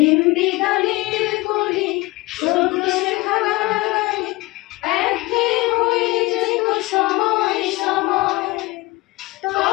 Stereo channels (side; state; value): right; quieter; 21.7 dB